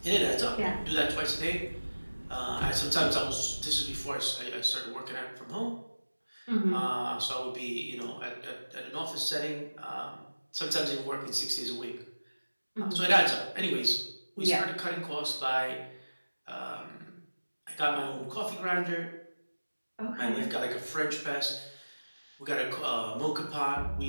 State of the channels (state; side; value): inverted; both; correlation -1.00